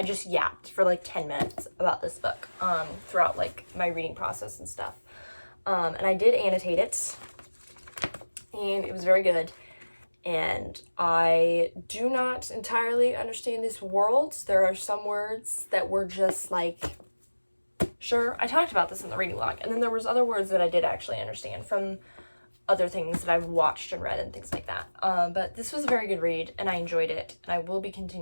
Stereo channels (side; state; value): both; inverted; correlation -1.00